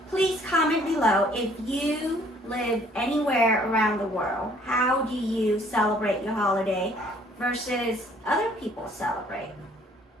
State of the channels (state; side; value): normal; both; correlation 0.59